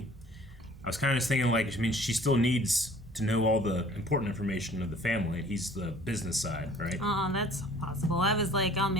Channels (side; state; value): both; normal; correlation 0.52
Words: I was kind of just thinking, like, she still needs to know all the important information of the family. He's the business side, right? That's possible. I was like,